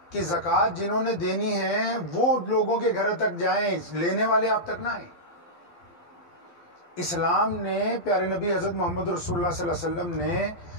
کہ زکوٰۃ جنہوں نے دینی ہے وہ لوگوں کے گھر تک جائیں، لینے والے آپ تک نہ آئیں۔ اسلام نے، پیارے نبی حضرت محمد رسول اللہ صلی اللہ علیہ وسلم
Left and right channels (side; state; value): right; late; 12 ms